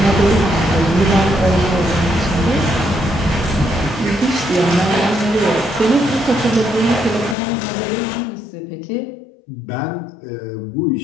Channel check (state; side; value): drops out; right; at 7.4 s